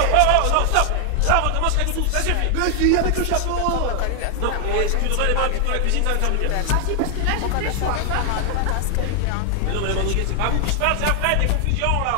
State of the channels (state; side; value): different; both; correlation 0.00